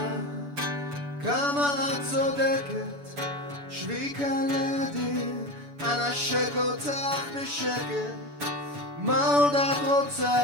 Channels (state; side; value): late; left; 7.0 ms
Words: כמה את צודקת, שבי כאן לידי, אנשק אותך בשקט. מה עוד את